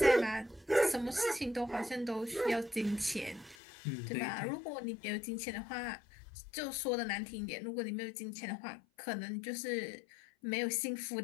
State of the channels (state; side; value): drops out; right; at 3.6 s